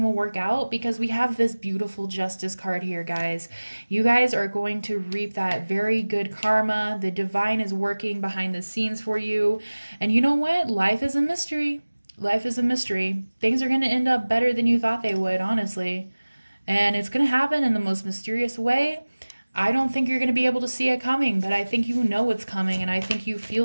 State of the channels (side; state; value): both; inverted; correlation -1.00